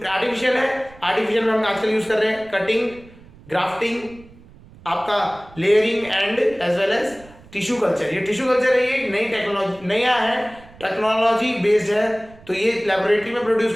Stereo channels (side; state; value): right; noise; rumble, 23 dB below the sound